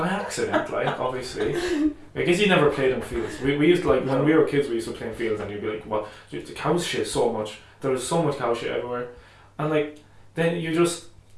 accident, like obviously. I guess you never played in fields. We used to, like, when we were kids, we used to play in fields, and you'd be like, "What? The cows shit so much. There was so much cow shit everywhere," and like then you just.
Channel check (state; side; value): identical; both; correlation 1.00